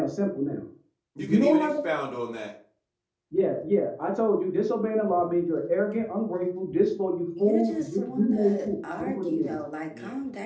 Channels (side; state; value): both; identical; correlation 1.00